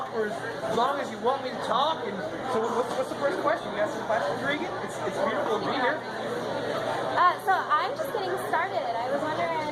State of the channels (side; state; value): both; identical; correlation 1.00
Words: for as long as you want me to talk. And so what's the first question? You got some questions, Reegan? It's beautiful to be here. So I'm just getting started. I was